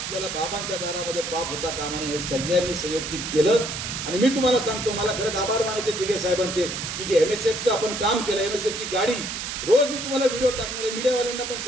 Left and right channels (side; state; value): right; noise; hiss, 5 dB below the sound